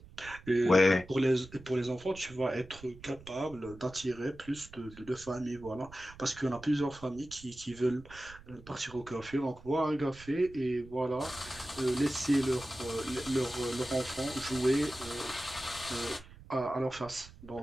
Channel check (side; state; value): right; noise; rumble, 19 dB below the sound